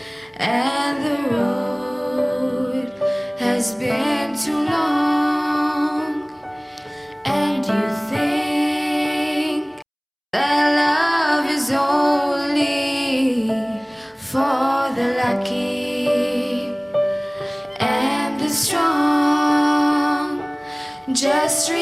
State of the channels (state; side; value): identical; both; correlation 1.00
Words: and the road has been too long, and you think that love is only for the lucky and the strong, just